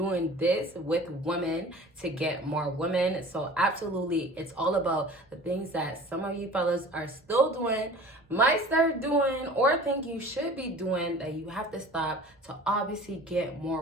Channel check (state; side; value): normal; both; correlation 0.43